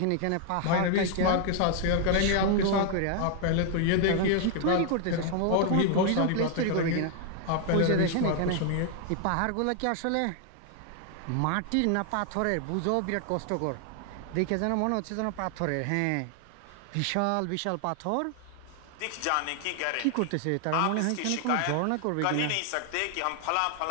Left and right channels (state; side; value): different; both; correlation 0.00